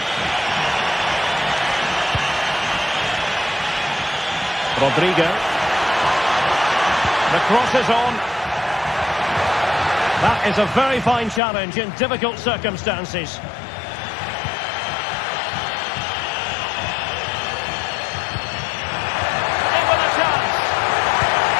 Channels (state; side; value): drops out; right; at 11.4 s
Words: Rodrigo. The cross is on. That is a very fine challenge in difficult circumstances.